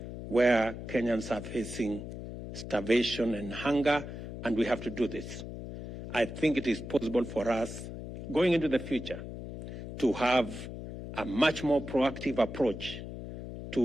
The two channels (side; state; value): left; noise; hum, 9 dB below the sound